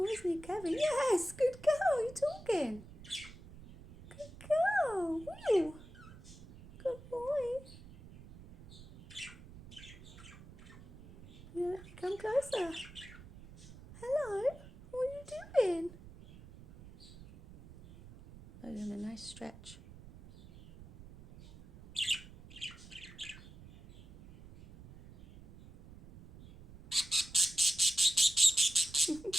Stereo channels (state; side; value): noise; right; rumble, 18 dB below the sound